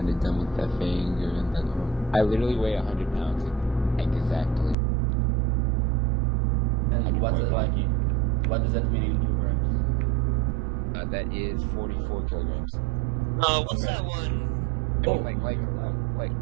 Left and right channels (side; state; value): left; drops out; at 4.8 s